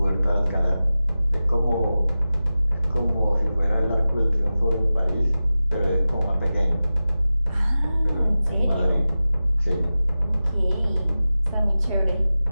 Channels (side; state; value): both; inverted; correlation -0.95